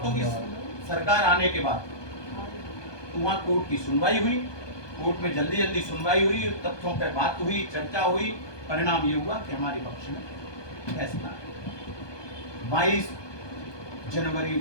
की सरकार आने के बाद तो वहां कोर्ट की सुनवाई हुई, कोर्ट में जल्दी जल्दी सुनवाई हुई, तथ्यों पर बात हुई, चर्चा हुई, परिणाम ये हुआ कि हमारे पक्ष में फैसला 22 जनवरी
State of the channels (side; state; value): right; late; 1.2 ms